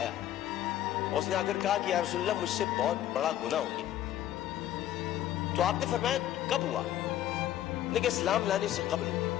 اس نے آ کر کہا کہ یا رسول اللہ، مجھ سے بہت بڑا گناہ ہو گیا۔ تو آپ نے فرمایا کب ہوا؟ لیکن اسلام لانے سے قبل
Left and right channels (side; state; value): right; quieter; 12.5 dB